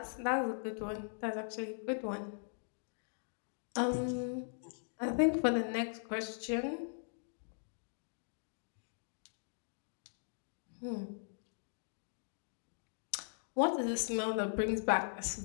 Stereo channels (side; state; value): right; silent; digital silence